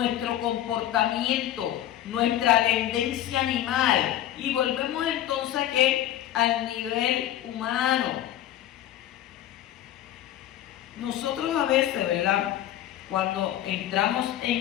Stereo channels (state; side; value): quieter; right; 12.4 dB